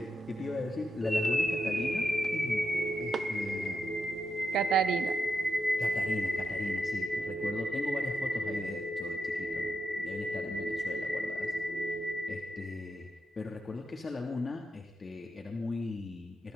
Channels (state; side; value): normal; both; correlation 0.84